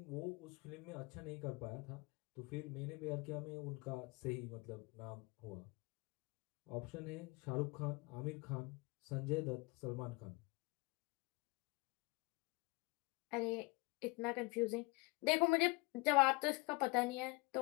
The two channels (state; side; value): quieter; right; 25.6 dB